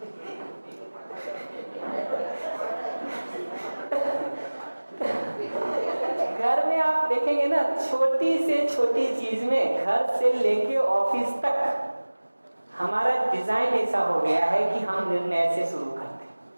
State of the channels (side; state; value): both; inverted; correlation -1.00